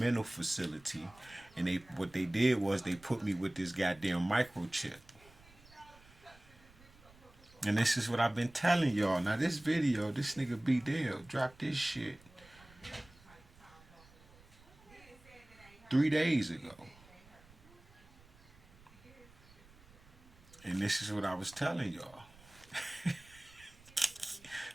facility, and what they did was they put me with this goddamn microchip. And this is what I've been telling y'all. Now this video, this nigga B Dale dropped this shit 3 days ago. And this is what I was telling y'all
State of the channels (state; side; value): noise; right; rumble, 25 dB below the sound